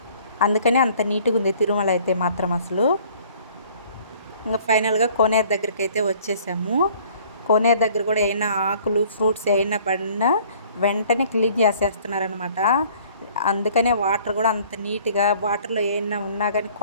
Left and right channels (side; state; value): both; inverted; correlation -0.55